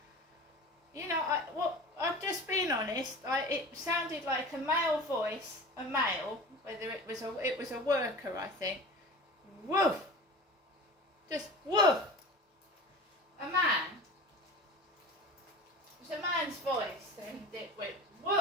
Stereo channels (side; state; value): both; normal; correlation 0.36